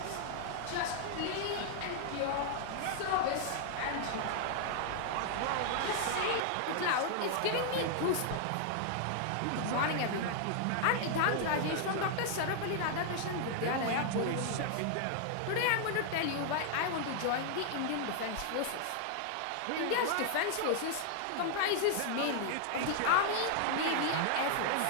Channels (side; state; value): both; different; correlation 0.00